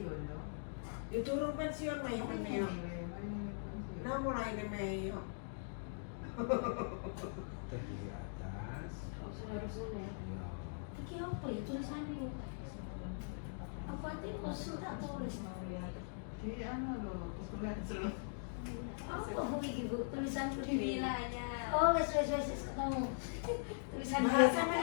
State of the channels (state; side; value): silent; right; digital silence